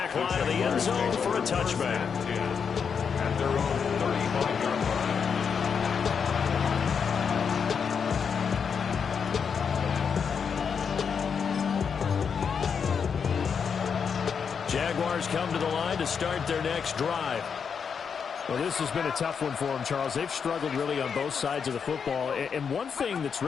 line of the end zone for a touchback. At their own 35-yard line. Jaguars come to the line to start their next drive. Well, this has been a tough one for them, Charles. They've struggled really on both sides of the football. And one thing that's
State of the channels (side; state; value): right; quieter; 6.5 dB